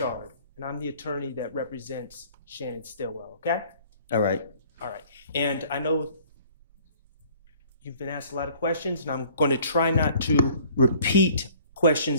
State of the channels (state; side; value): inverted; both; correlation -0.54